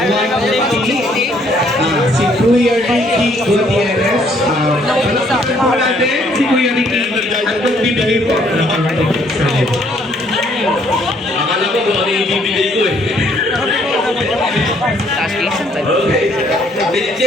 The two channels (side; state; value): both; normal; correlation 0.65